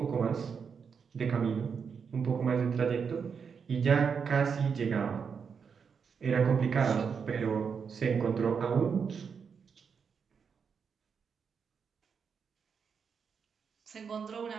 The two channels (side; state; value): left; quieter; 6.3 dB